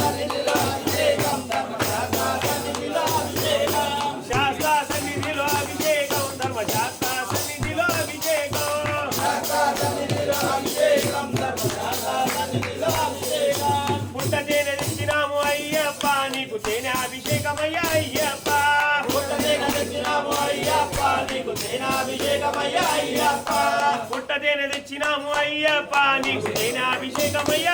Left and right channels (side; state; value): both; identical; correlation 1.00